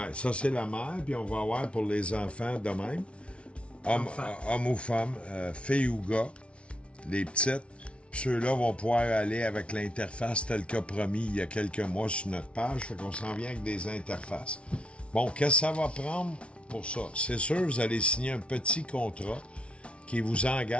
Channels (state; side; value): late; right; 0.060 ms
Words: ça c'est la mère, puis on va avoir pour les enfants de même. Homme ou femme, fille ou gars, les petites. Puis ceux-là vont pouvoir aller avec l'interface telle qu'a promis il y a quelques mois sur notre page. Fait qu'on s'en vient avec des interfaces. Bon, qu'est-ce que ça va prendre pour ça? C'est sûr, vous allez signer un petit contrat qui vous